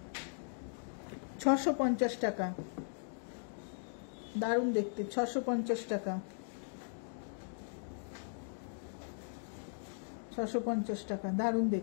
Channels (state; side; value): silent; right; digital silence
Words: 650 টাকা, দারুণ দেখতে। 650 টাকা, 650 টাকা, দারুণ